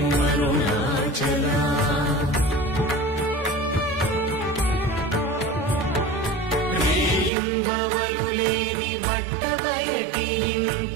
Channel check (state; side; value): drops out; left; at 7.3 s